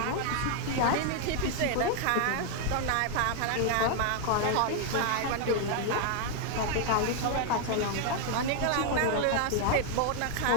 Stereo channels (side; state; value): both; different; correlation 0.00